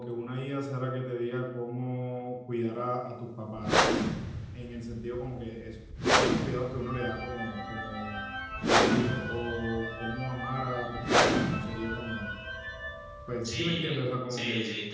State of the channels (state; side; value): identical; both; correlation 1.00